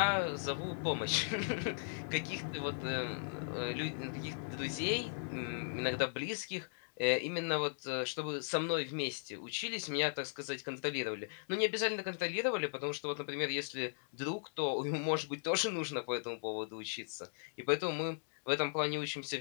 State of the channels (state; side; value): silent; right; digital silence